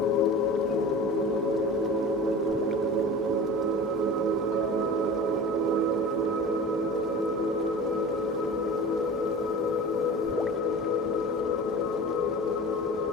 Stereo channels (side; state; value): both; normal; correlation 0.36